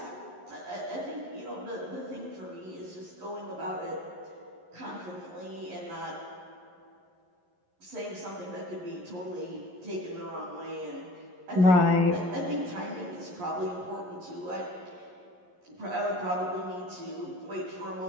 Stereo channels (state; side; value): late; left; 11 ms